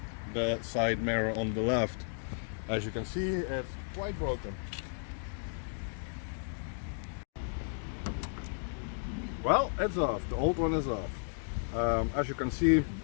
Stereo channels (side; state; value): right; silent; digital silence